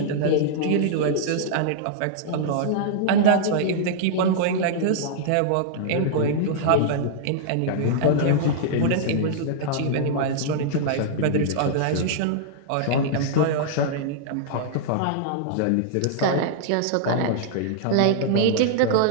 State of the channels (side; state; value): both; different; correlation -0.01